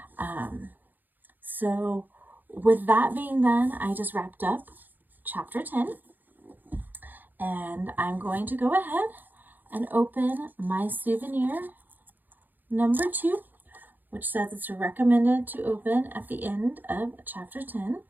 So with that being done, I just wrapped up chapter 10. And I'm going to go ahead and open my souvenir number 2, which says it's recommended to open at the end of chapter 10.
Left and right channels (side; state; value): left; late; 0.087 ms